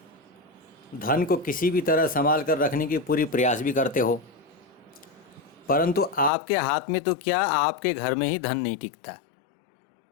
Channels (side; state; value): right; drops out; at 6.3 s